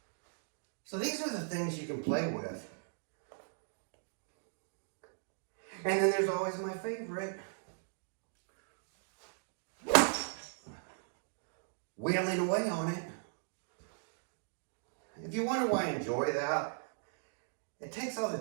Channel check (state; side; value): silent; left; digital silence